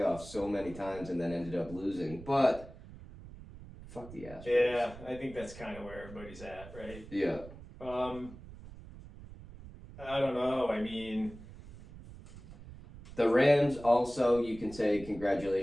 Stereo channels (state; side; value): noise; right; rumble, 16 dB below the sound